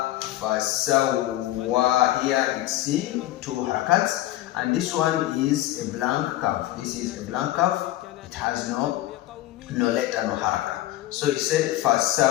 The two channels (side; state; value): right; quieter; 15.3 dB